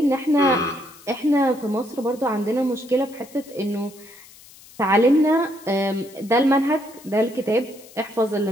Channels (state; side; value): noise; left; hiss, 22 dB below the sound